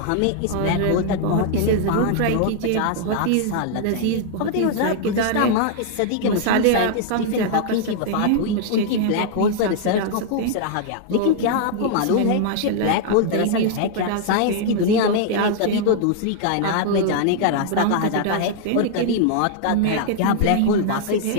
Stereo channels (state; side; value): different; both; correlation -0.01